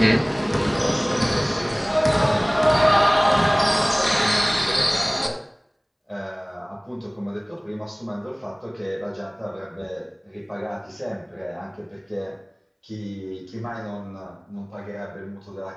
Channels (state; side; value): identical; both; correlation 1.00